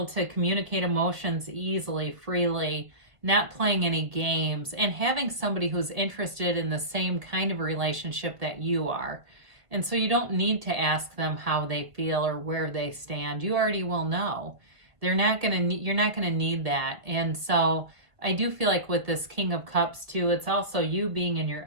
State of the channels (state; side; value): late; left; 1.5 ms